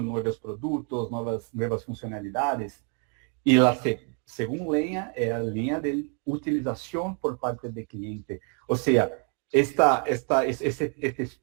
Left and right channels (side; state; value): left; quieter; 39.9 dB